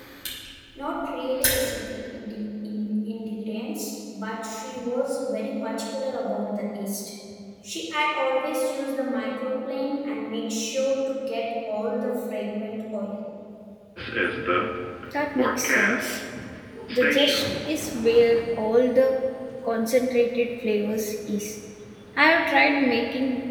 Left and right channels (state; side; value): identical; both; correlation 1.00